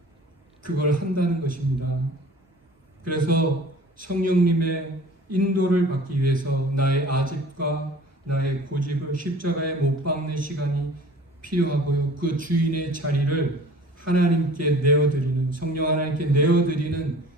그걸 한다는 것입니다. 그래서 성령님의 인도를 받기 위해서 나의 아집과 나의 고집을 십자가에 못 박는 시간이 필요하고요. 그 주인의 자리를 하나님께 내어드리는, 성령 하나님께 내어드리는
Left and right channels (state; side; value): normal; both; correlation 0.46